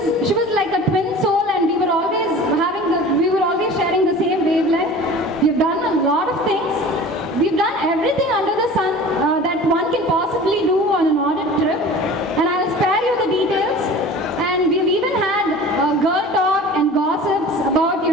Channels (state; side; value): normal; both; correlation 0.40